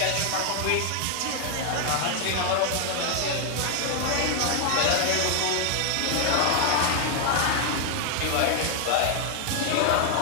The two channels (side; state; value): both; different; correlation 0.00